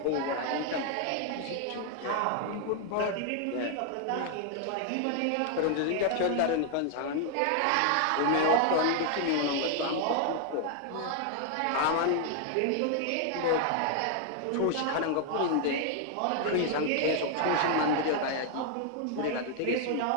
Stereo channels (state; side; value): different; both; correlation 0.00